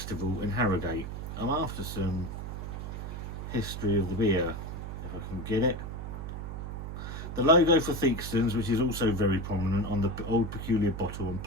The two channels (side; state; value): right; noise; hum, 7 dB below the sound